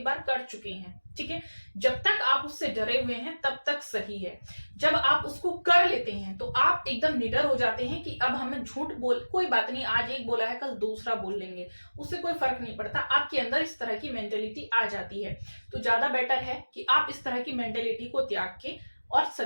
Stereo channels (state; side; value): inverted; both; correlation -1.00